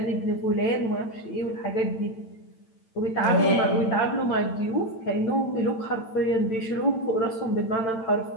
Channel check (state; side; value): late; right; 9.0 ms